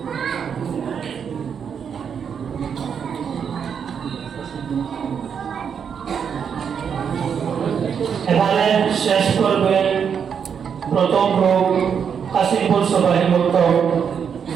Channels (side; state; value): left; quieter; 7.2 dB